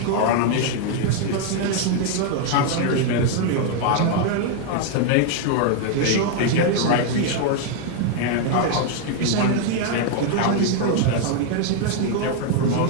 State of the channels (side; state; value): both; different; correlation 0.00